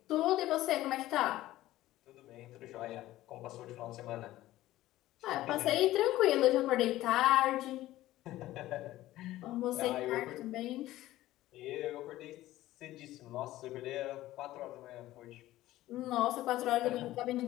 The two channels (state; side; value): quieter; right; 15.6 dB